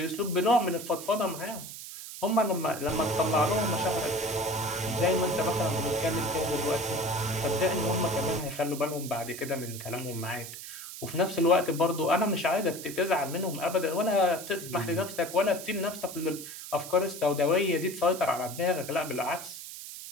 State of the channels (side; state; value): right; noise; hiss, 11 dB below the sound